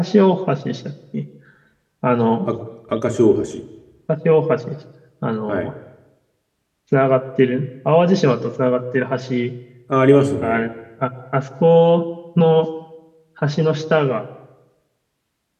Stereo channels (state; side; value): identical; both; correlation 1.00